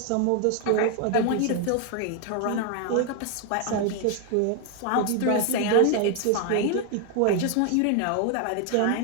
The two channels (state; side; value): different; both; correlation 0.01